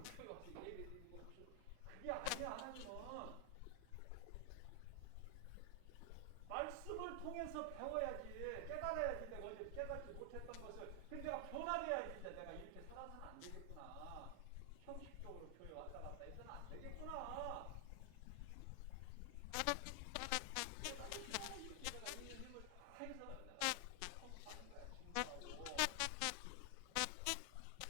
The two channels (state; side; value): different; both; correlation 0.00